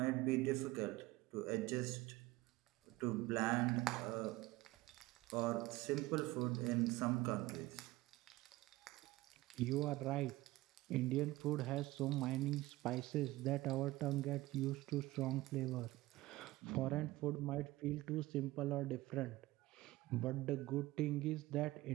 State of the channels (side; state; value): left; quieter; 18.7 dB